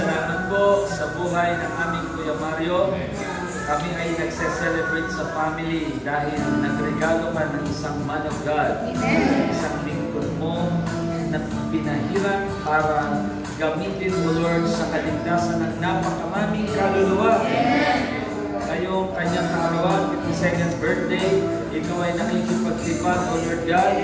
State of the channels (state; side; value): identical; both; correlation 1.00